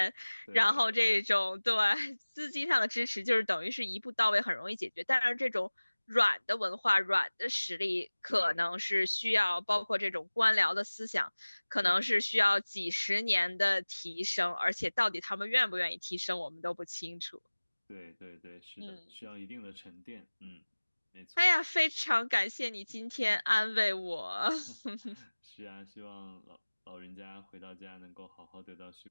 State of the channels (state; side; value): inverted; both; correlation -1.00